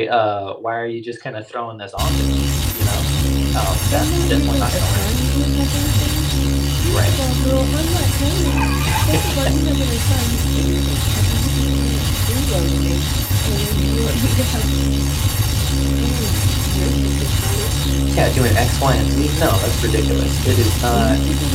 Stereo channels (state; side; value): identical; both; correlation 1.00